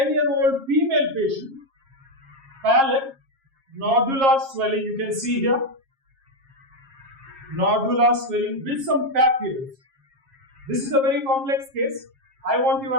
female patient, palate, nodular swelling, you can see here. Nodular swelling with some papules. This is a very complex case. I want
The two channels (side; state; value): left; late; 7.4 ms